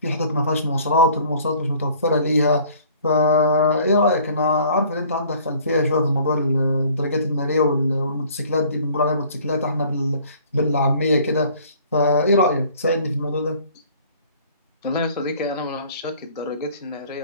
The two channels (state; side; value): inverted; both; correlation -0.53